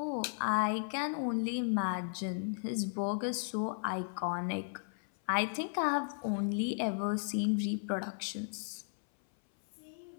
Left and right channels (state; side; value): silent; right; 54 dB below the other